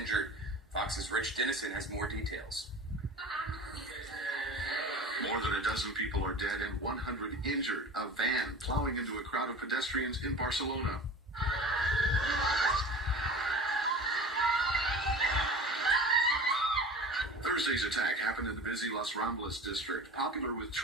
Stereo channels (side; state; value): both; normal; correlation 0.37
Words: Fox's Rich Dennison has more details. More than a dozen people are dead and 100 injured. A van plowing into a crowd of pedestrians in Barcelona. Thursday's attack happened in the busy Las Ramblas district, popular with